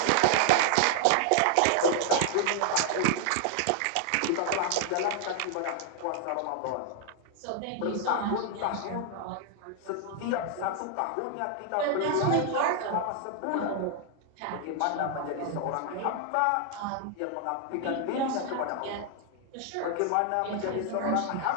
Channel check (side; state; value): both; different; correlation 0.00